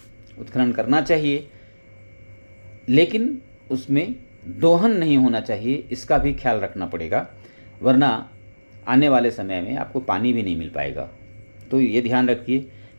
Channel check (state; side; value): inverted; both; correlation -1.00